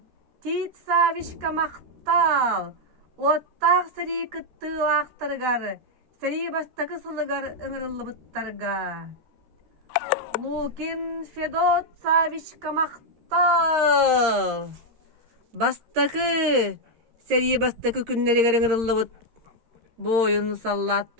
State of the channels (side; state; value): left; late; 13 ms